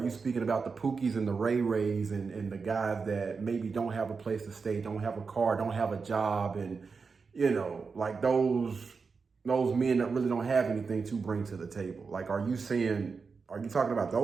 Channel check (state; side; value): quieter; left; 5.0 dB